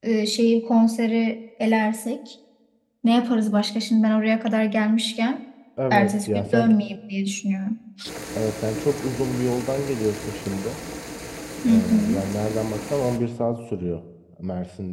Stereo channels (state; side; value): identical; both; correlation 1.00